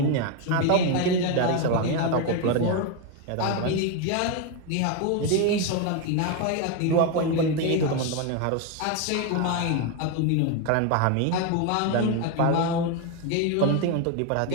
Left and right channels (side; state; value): both; different; correlation 0.02